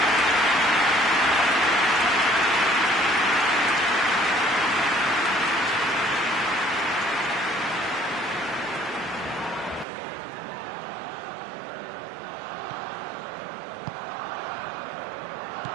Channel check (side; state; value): left; drops out; at 9.9 s